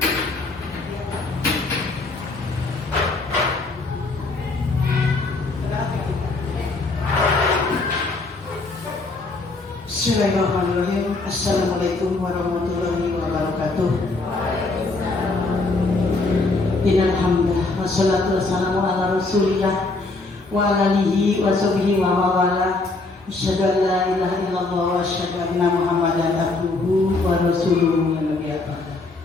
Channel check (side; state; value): right; quieter; 3.4 dB